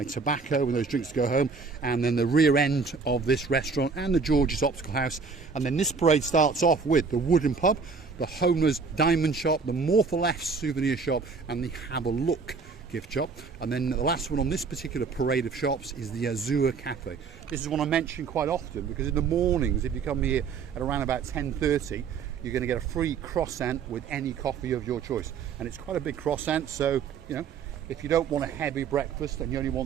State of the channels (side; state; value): left; quieter; 5.1 dB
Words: tobacco and those drinks to go home, and then the rear end of this restaurant and the George's Optical House. And then this parade starts off with the Wooden Pub, the Homer's Diamond Shop, the More for Less souvenir shop, and the Have a Look gift shop. And then the last one on this particular parade of shops is the Azure Cafe. This is one I mention quite often because in the mornings, if you come here at around about 10:30, you're going to get a free croissant with any coffee of your choice. And it's quite a big croissant, so, you know, if you don't want a heavy breakfast and you only